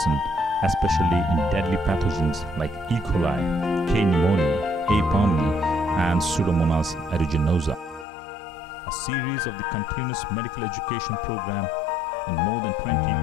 especially in deadly pathogens like E. coli, K. pneumoniae, A. pneumoniae, and Pseudomonas aeruginosa. A series of the continuous medical education program in more than 20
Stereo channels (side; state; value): right; drops out; at 8.1 s